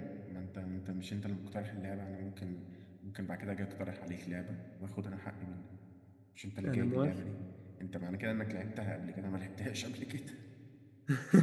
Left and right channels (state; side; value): identical; both; correlation 1.00